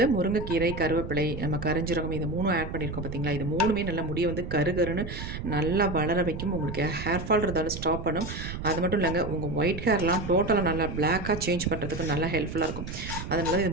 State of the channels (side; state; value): right; noise; rumble, 7 dB below the sound